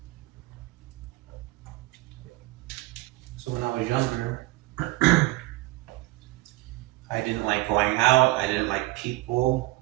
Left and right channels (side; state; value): left; quieter; 19.9 dB